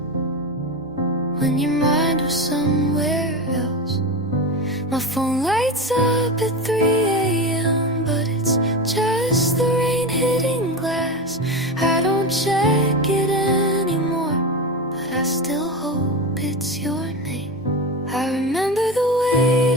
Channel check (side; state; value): both; normal; correlation 0.22